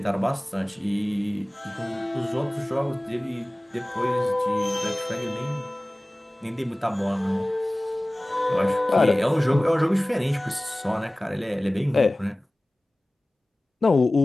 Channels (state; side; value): normal; both; correlation 0.98